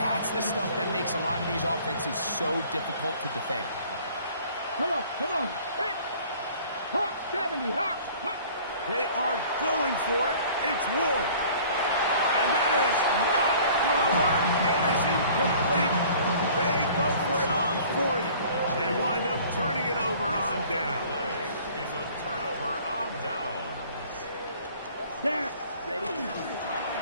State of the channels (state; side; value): inverted; both; correlation -0.51